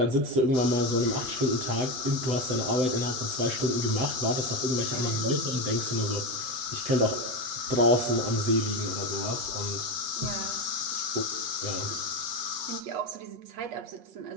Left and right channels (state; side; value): late; left; 7.5 ms